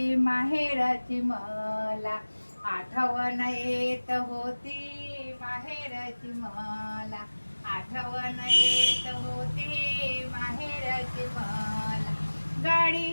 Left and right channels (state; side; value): inverted; both; correlation -1.00